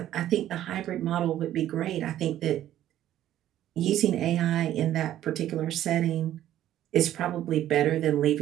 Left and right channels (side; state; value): left; quieter; 12.5 dB